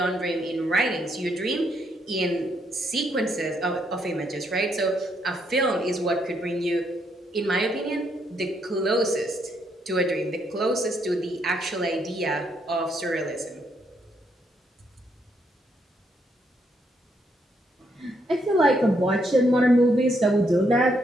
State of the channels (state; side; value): normal; both; correlation 0.75